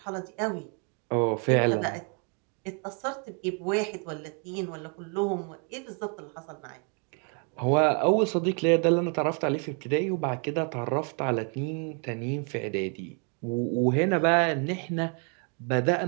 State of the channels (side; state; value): left; quieter; 39.0 dB